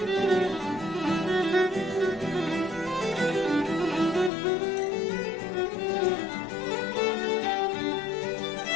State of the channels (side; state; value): right; drops out; at 4.3 s